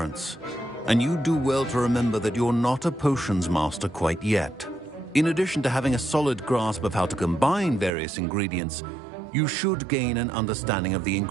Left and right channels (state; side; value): drops out; left; at 7.9 s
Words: And you do well to remember that you're not a potions master quite yet. In addition to having a solid grasp of how to combine various ingredients, you should gain an understanding of the